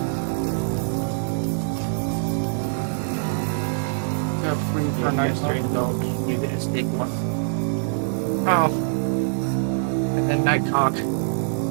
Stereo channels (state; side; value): silent; left; digital silence